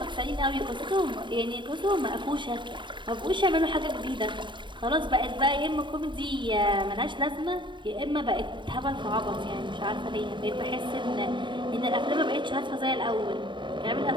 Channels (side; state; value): left; late; 0.23 ms